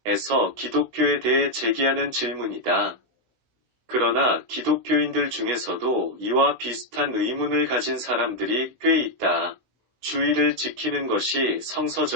기독교에 대해 제기하는 질문이다. 그러나 기독교인들 중에서도 이와 비슷한 의문을 가진 사람들이 꽤 있다. 주일을 지키는 것이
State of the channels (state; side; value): late; left; 16 ms